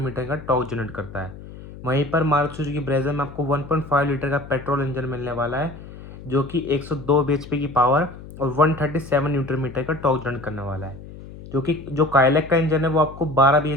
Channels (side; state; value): left; noise; hum, 15 dB below the sound